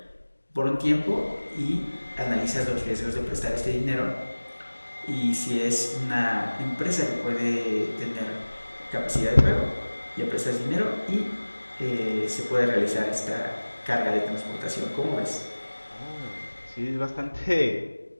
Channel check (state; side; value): inverted; both; correlation -1.00